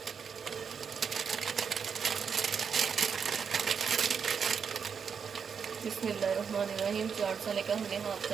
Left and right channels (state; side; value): quieter; left; 6.6 dB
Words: बिस्मिल्लाहिर्रहमानिर्रहीम। चाट मसाले का हमने 1/2